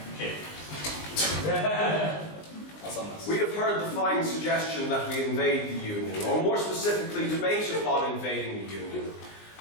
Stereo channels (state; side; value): late; right; 19 ms